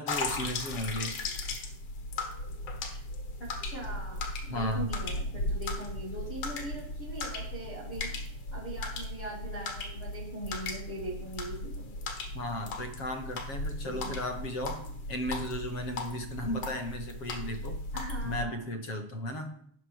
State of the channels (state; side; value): late; right; 7.6 ms